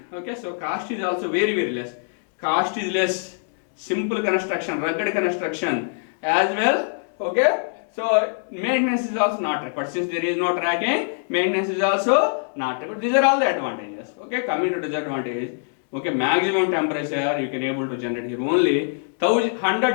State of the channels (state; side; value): silent; right; digital silence